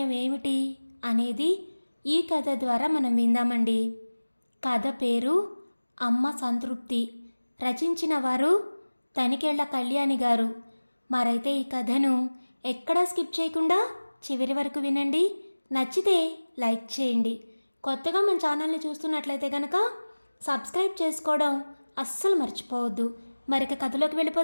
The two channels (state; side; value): inverted; both; correlation -1.00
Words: ఏమిటి అనేది ఈ కథ ద్వారా మనం విందామండి. కథ పేరు అమ్మ సంతృప్తి. రచించిన వారు తనికెళ్ల కళ్యాణి గారు. మరైతే ఈ కథను ఎక్కడా స్కిప్ చేయకుండా చివరి వరకు వినండి. నచ్చితే లైక్ చేయండి. కొత్తగా మన ఛానల్ని చూస్తున్నట్లయితే కనుక సబ్స్క్రైబ్ చేసుకోవడం అస్సలు మర్చిపోవద్దు. మరిక కథలోకి